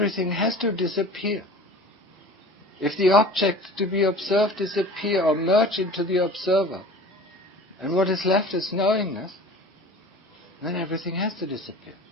has to disappear. If the object to be observed disappear or merge into the observer, and what is left is knowingness, then everything has to disappear.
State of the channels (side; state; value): both; normal; correlation 0.41